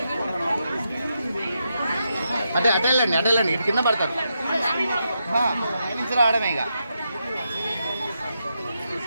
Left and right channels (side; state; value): both; inverted; correlation -0.84